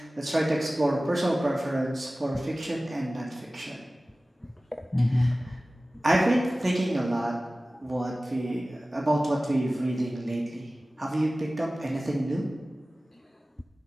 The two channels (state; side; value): normal; both; correlation 0.97